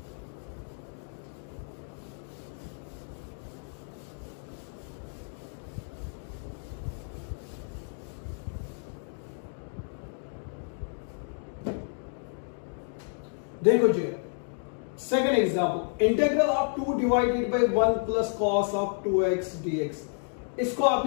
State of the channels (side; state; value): right; silent; 57 dB below the other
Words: देखो जी, second example, integral of 2 divided by 1 plus cos of 2x dx। इसको